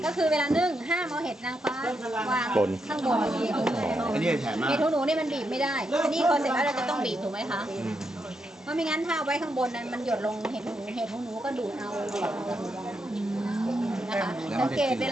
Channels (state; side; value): normal; both; correlation 0.82